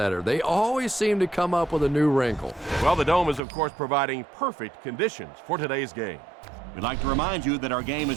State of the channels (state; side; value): drops out; left; at 3.4 s